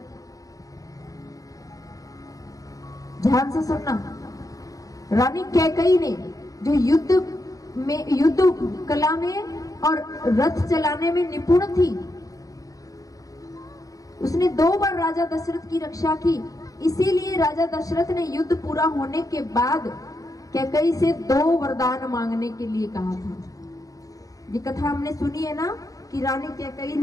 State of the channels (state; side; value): late; right; 0.17 ms